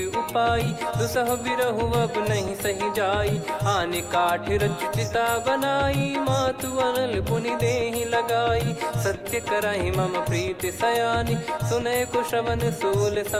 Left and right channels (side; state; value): both; identical; correlation 1.00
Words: उपाई, दुसह बिरहु अब नहीं सही जाई। आने काठ रचु चिता बनाई, मातु अनल पुनि देहि लगाई। सत्य करहि मम प्रीति सयानी, सुनय को श्रवण सूल